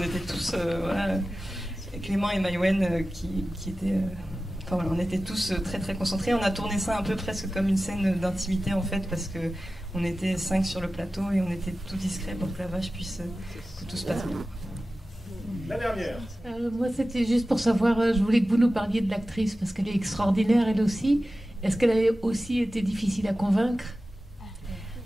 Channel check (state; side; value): normal; both; correlation 0.95